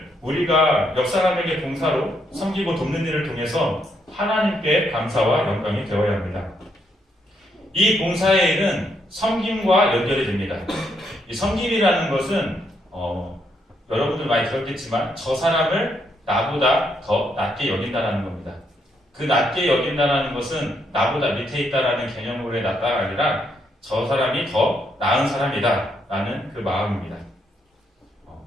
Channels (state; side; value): normal; both; correlation 0.76